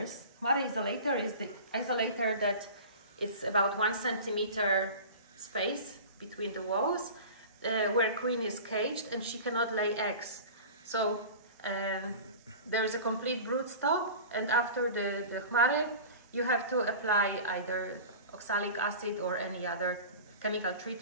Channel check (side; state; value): both; inverted; correlation -0.37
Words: Chmary isolator is the isolator that it's about 1 centimeter space between the walls, where queen is caged and she cannot lay eggs. So there is a complete brood stop, and after the Chmary, you have to apply either oxalic acid or any other chemical